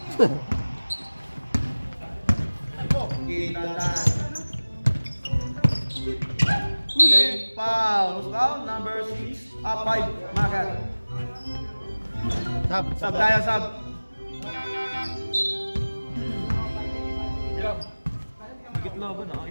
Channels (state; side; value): inverted; both; correlation -1.00